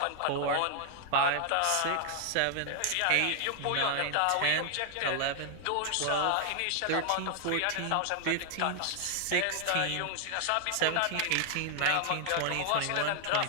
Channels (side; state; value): both; different; correlation 0.00